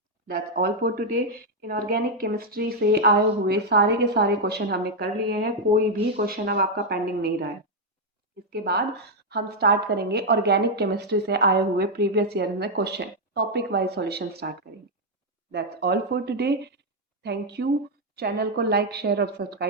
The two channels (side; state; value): both; normal; correlation 0.00